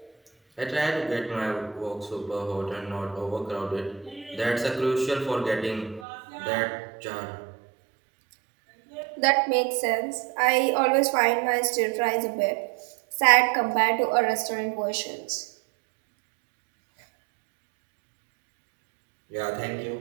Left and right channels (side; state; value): left; drops out; at 6.1 s